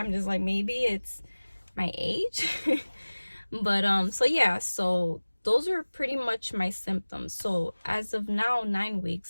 just like, maybe it's my age. But so yeah, so those are pretty much my symptoms. So as of now, 9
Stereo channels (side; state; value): both; inverted; correlation -1.00